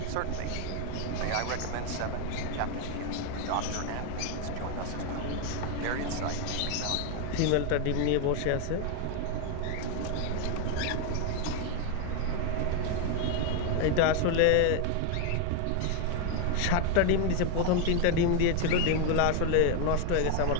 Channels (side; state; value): both; different; correlation 0.01